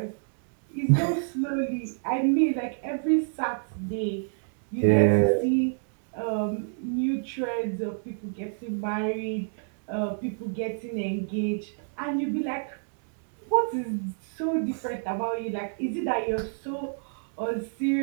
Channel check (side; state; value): left; silent; digital silence